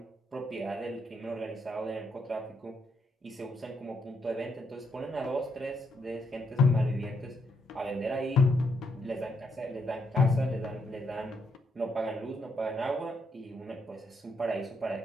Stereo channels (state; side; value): normal; both; correlation 0.77